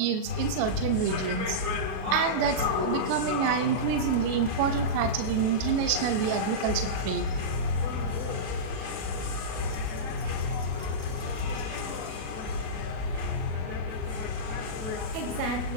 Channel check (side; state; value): left; late; 37 ms